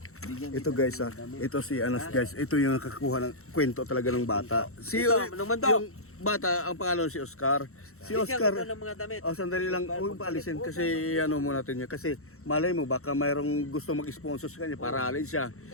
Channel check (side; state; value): right; late; 0.63 ms